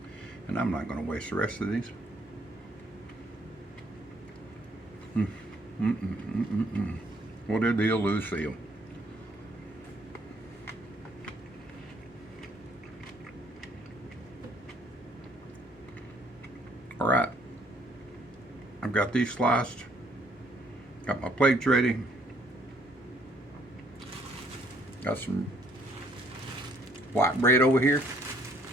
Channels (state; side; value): normal; both; correlation 0.65